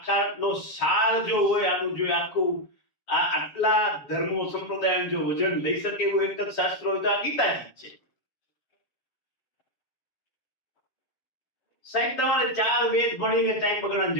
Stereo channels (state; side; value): late; right; 7.1 ms